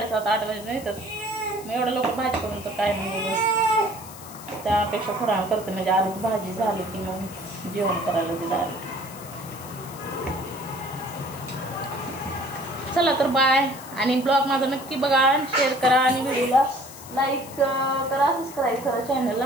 8 वाजता येतात. मग एवढं लवकर भाजी करून तर काय नाही, त्यापेक्षा थोडा वेळ करते, म्हणजे आधी भाजी झाली की मग जेवण करायला दिलं. चला तर बाय. आणि ब्लॉग माझा नक्की बघा, शेअर करा आणि व्हिडिओला लाईक करा, सबस्क्राईब करा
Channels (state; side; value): noise; left; hiss, 16 dB below the sound